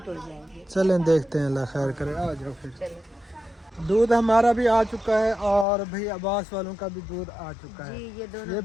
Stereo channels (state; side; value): drops out; right; at 5.7 s